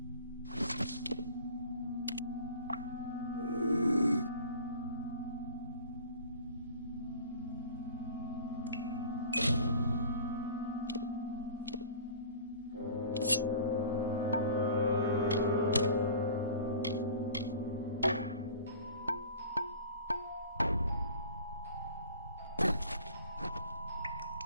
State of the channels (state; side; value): inverted; both; correlation -0.44